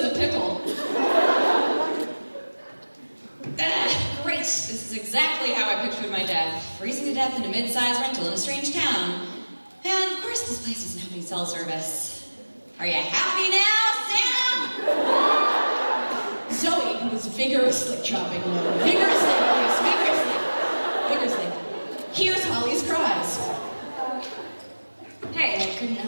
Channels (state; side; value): inverted; both; correlation -1.00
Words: a pickle. Great. This is exactly how I pictured my death. Freezing to death in a mid-sized rental in a strange town. And of course this place doesn't have any cell service. Are you happy now, Sam? Zoe, who was vigorously chopping wood, vigorously, hears Holly's cries. Hey, I couldn't